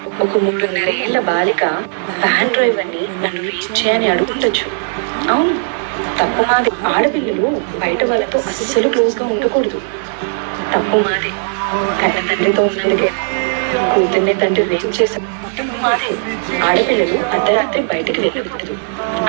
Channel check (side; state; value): left; silent; 62 dB below the other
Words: ఒక 3.5 ఏళ్ల బాలిక వ్యాన్ డ్రైవర్ని నన్ను రీచ్ చేయని అడుగుండొచ్చు. అవును, తప్పు మాదే. ఆడపిల్లలు బయట వాళ్ళతో అస్సలు క్లోజ్గా ఉండకూడదు. తప్పు మాదే. కన్న తండ్రితో ఉన్నందుకే కూతుర్ని తండ్రి రేపు చేశారు. తప్పు మాదే. ఆడపిల్లలు అర్ధరాత్రి బయటకు వెళ్ళకూడదు.